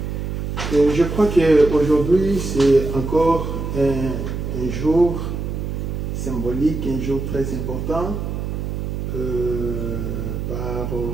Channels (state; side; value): noise; right; hum, 4 dB below the sound